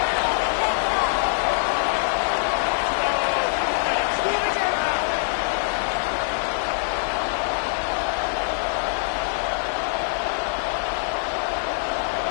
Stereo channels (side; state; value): right; silent; digital silence